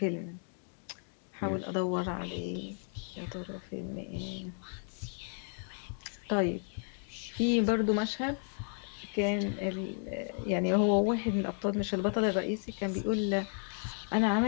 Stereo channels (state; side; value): silent; right; 55 dB below the other